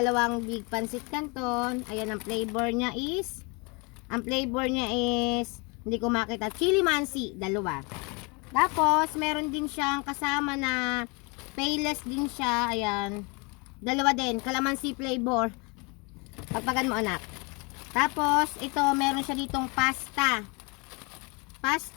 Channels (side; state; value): right; quieter; 30.0 dB